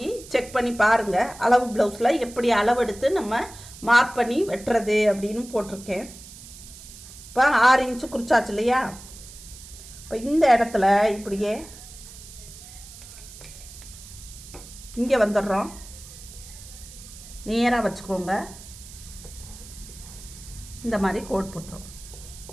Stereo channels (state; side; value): noise; right; hiss, 17 dB below the sound